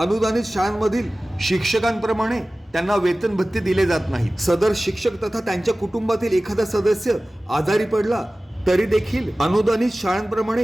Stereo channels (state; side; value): normal; both; correlation 0.97